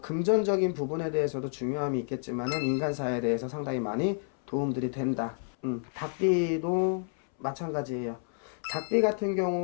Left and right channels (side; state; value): right; silent; 58 dB below the other